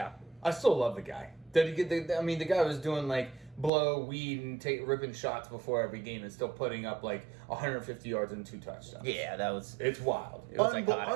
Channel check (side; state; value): left; drops out; at 3.7 s